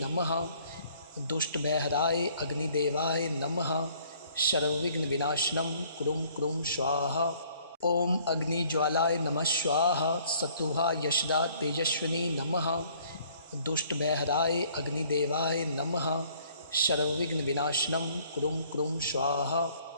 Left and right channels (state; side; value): inverted; both; correlation -0.59